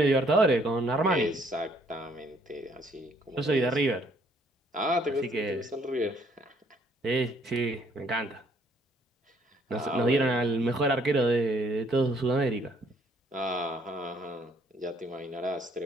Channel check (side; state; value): both; normal; correlation 0.65